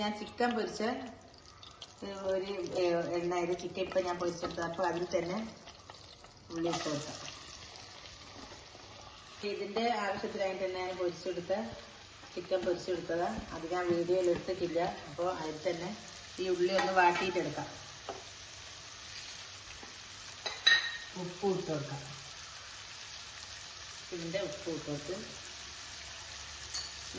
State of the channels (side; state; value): both; identical; correlation 1.00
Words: ഞാൻ ചിക്കൻ പൊരിച്ച ഒരു എണ്ണയിൽ ചിക്കൻ ഇപ്പം ഞാൻ പൊരിച്ചെടുത്തത്. അപ്പോൾ അതിൽ തന്നെ ഉള്ളി ഇട്ട് കൊടുക്കാം. ഇതിൻ്റെ ആവശ്യത്തിനായിട്ട് തന്നെ ഞാൻ പൊരിച്ചെടുത്ത ചിക്കൻ പൊരിച്ചെടുത്തതാണ്. അത് ഞാൻ വീഡിയോയിൽ എടുത്തിട്ടില്ല. അപ്പോൾ അതിൽ തന്നെ ഈ ഉള്ളി ഒന്ന് വാട്ടിയിട്ടെടുക്കാം. ഉപ്പ് ഇട്ട് കൊടുക്കാം. ഇതിൻ്റെ ഉപ്പ് ഇട്ട് കൊടുത്ത്